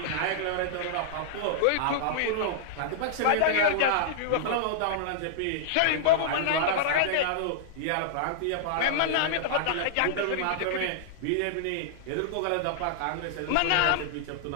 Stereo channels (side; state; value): both; different; correlation -0.01